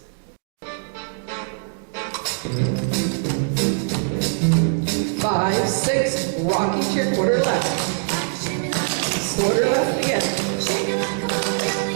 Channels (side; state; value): left; silent; 64 dB below the other